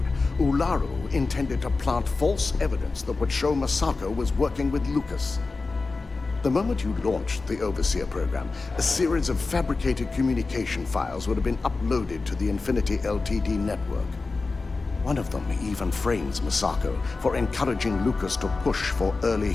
Ularu intended to plant false evidence that would show Masako was working with Lucas. The moment you launched the Overseer program, a series of fabricated communication files would have been uploaded to the Infinity Ltd network. One of them even frames Masako for encouraging Lucas to push for early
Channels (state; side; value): quieter; right; 3.9 dB